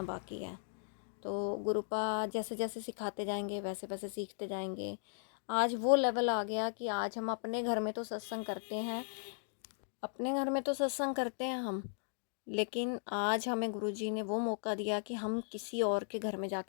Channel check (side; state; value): right; silent; digital silence